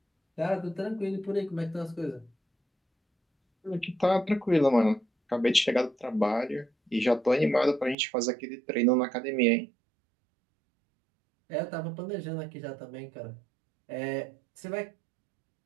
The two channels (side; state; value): left; drops out; at 8.0 s